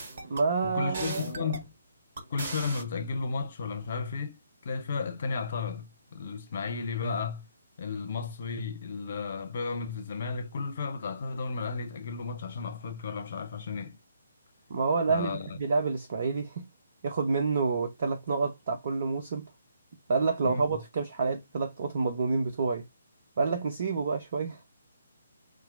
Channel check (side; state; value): both; inverted; correlation -0.72